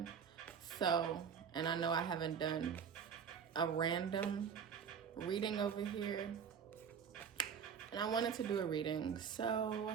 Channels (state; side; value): quieter; left; 7.2 dB